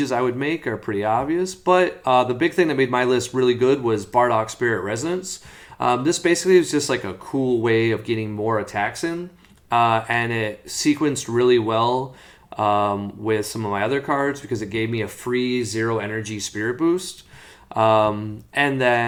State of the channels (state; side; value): identical; both; correlation 1.00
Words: I would make are pretty obvious, but the big thing that made my list really good was Bardock Spirit Resonance. This basically is just like a cool way of getting more attacks in, and it sequenced really well with some of my other cards because it gave me a free 0 energy spirit boost. And